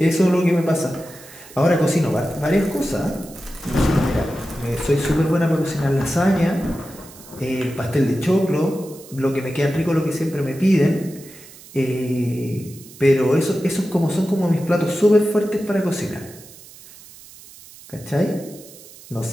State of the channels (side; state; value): right; noise; hiss, 20 dB below the sound